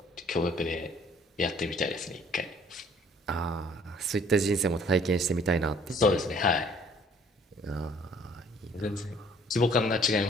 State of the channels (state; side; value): normal; both; correlation 0.58